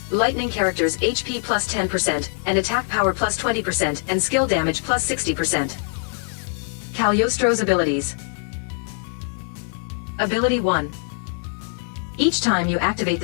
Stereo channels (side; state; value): right; silent; 63 dB below the other